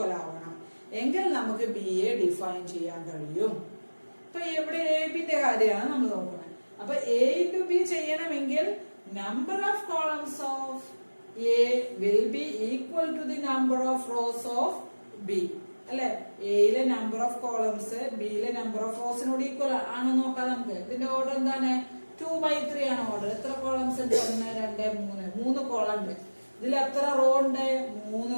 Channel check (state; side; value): inverted; both; correlation -1.00